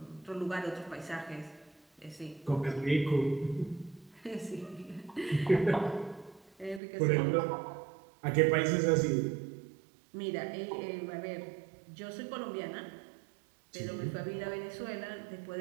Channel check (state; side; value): drops out; left; at 6.8 s